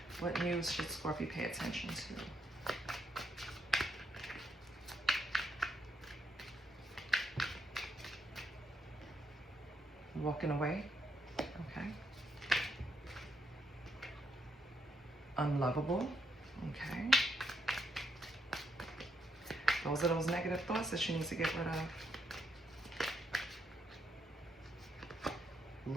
What news should Scorpio pay attention to? Walking away. Okay. Unlovable. Okay. The Those are those negative thoughts that you need to get rid of.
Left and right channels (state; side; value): normal; both; correlation 0.78